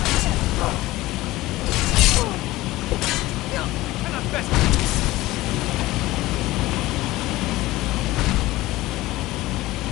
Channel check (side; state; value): right; quieter; 18.0 dB